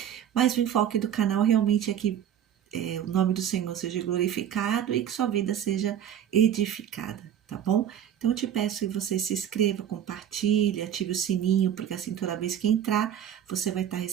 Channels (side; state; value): left; quieter; 9.9 dB